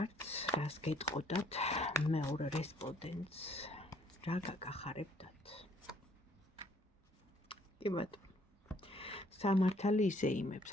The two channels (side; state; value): both; normal; correlation 0.63